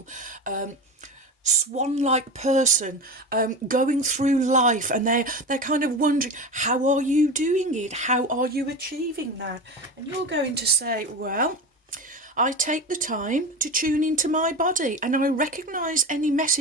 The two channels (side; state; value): both; normal; correlation 0.25